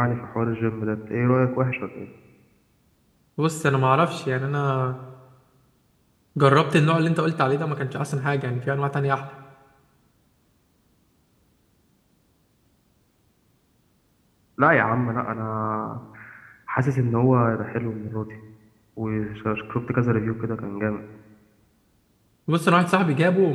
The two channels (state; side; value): identical; both; correlation 1.00